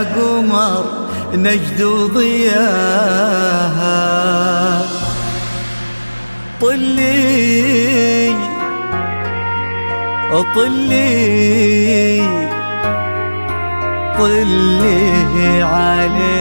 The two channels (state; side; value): inverted; both; correlation -1.00